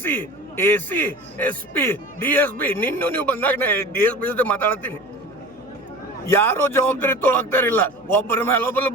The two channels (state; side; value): noise; left; hum, 30 dB below the sound